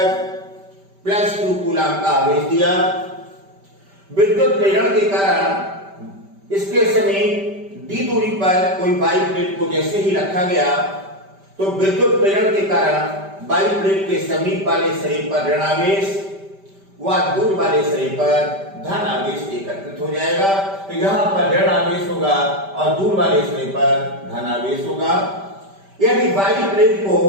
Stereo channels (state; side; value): late; left; 5.1 ms